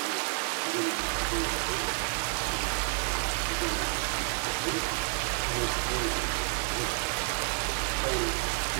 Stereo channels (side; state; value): left; quieter; 38.2 dB